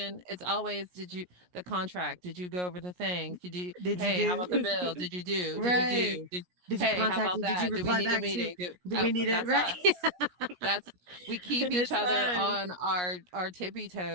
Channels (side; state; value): left; late; 17 ms